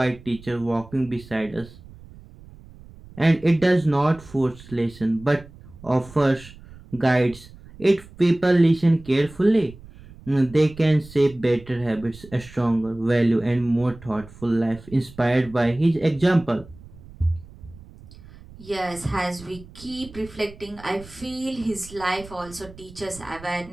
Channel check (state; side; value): noise; right; rumble, 20 dB below the sound